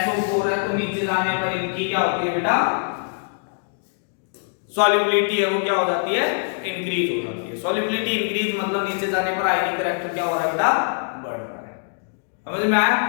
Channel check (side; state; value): right; silent; digital silence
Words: है। तो नीचे जाने पर इनकी क्या होती है बेटा? सॉल्युबिलिटी है वो क्या हो जाती है? इंक्रीज हो जाती है। सॉल्युबिलिटी इंक्रीज मतलब नीचे जाने पर आयनिक करेक्टर क्या हो रहा है बेटा? बढ़ रहा है। समझ में आया?